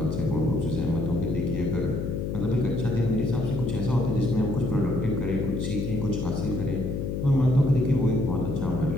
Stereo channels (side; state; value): left; noise; hum, 2 dB below the sound